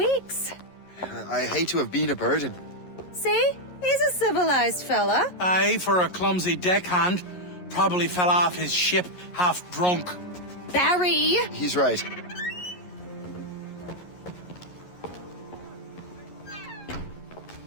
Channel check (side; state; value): right; late; 11 ms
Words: I hate to have been a burden. See? He's a civilized fella. Aye, for a clumsy deckhand. Probably fell off his ship half drunk. Barry! He's right.